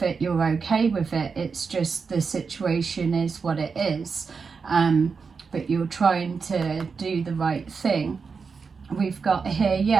it, you're okay with it. It's just the situation is what it is, but you're trying to do the right thing. We've got here,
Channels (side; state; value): left; quieter; 5.3 dB